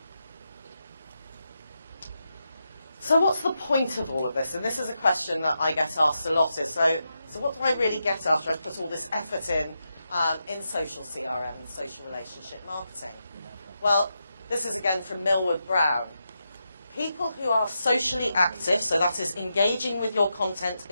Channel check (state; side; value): inverted; both; correlation -0.86